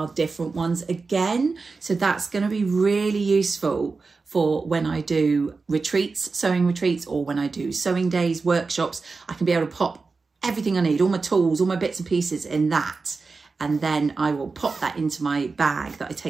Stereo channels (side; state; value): left; quieter; 4.2 dB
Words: different ones again. So that's going to be really useful for when I do retreats, sewing retreats, or when I do sewing days, workshops. I can be able to pop everything I need, all my tools, all my bits and pieces in that. And then I will pop that into my bag that I